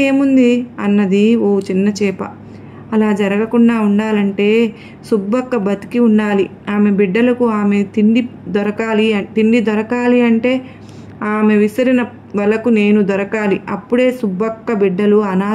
ఏముంది అన్నది ఓ చిన్న చేప. అలా జరగకుండా ఉండాలంటే సుబ్బక్క బతికి ఉండాలి. ఆమె బిడ్డలకు ఆమె తిండి దొరకాలి అంటే ఆమె విసిరిన వలకు నేను దొరకాలి. అప్పుడే సుబ్బక్క బిడ్డలు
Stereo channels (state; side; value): identical; both; correlation 1.00